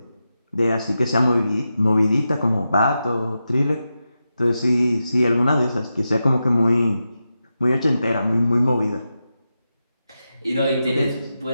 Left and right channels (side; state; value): both; inverted; correlation -0.90